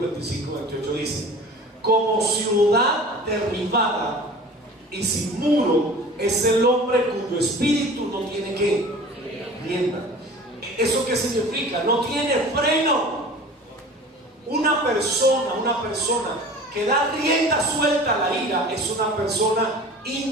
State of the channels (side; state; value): both; normal; correlation 0.41